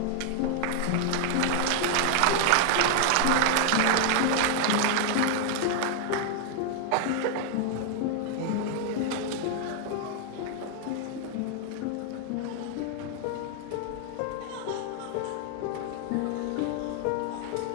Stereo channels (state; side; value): different; both; correlation 0.00